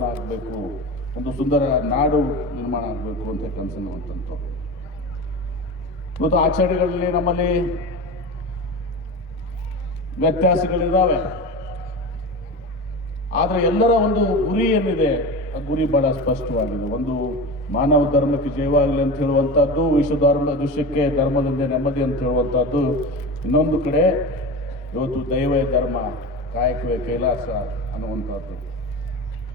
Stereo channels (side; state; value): both; normal; correlation 0.28